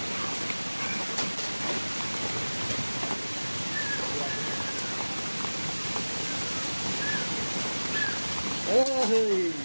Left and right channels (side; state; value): both; inverted; correlation -1.00